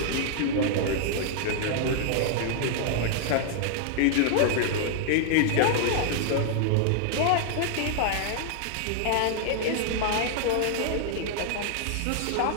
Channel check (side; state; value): both; different; correlation -0.01